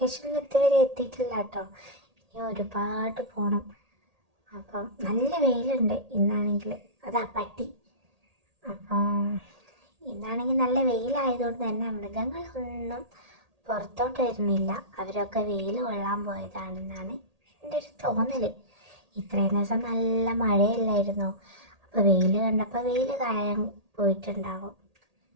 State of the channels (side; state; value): left; late; 1.8 ms